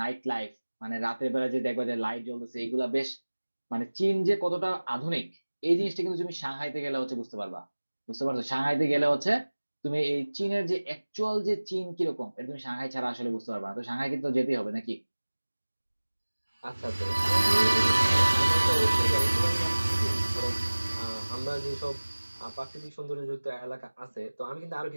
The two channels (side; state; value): both; inverted; correlation -1.00